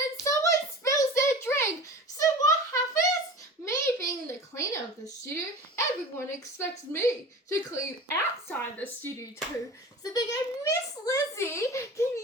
someone spills their drink. So what happens? Me being the cleaner of the studio, everyone expects me to clean outside the studio too. So they go, Miss Lizzie, can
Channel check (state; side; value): normal; both; correlation 0.36